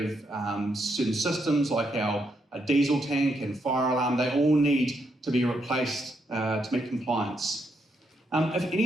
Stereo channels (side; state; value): both; normal; correlation 0.78